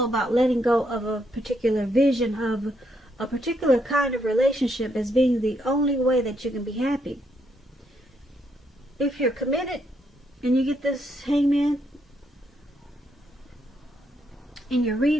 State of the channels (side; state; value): both; normal; correlation 0.76